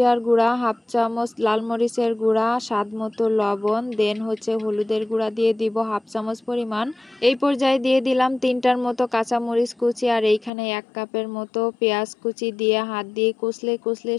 গুঁড়া, হাফ চামচ লাল মরিচের গুঁড়া, স্বাদ মতো লবণ, দেন হচ্ছে হলুদের গুঁড়া দিয়ে দিব হাফ চামচ পরিমাণ। এই পর্যায়ে দিয়ে দিলাম 3টার মতো কাঁচামরিচ কুচি, আর এইখানে 1 কাপের মতো পেঁয়াজ কুচি দিয়ে হাত দিয়ে কষলে কষলে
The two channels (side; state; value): right; drops out; at 10.5 s